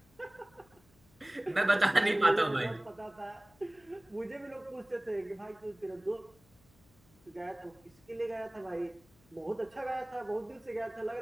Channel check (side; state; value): left; noise; hum, 29 dB below the sound